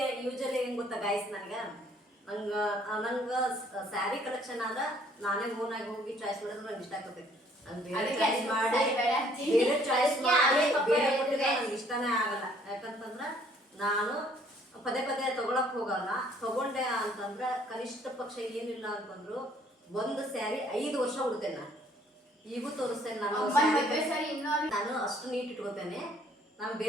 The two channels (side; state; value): both; normal; correlation 0.61